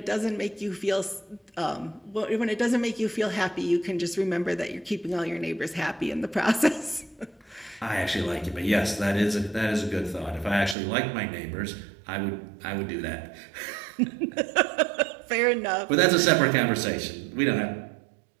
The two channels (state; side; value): drops out; left; at 10.8 s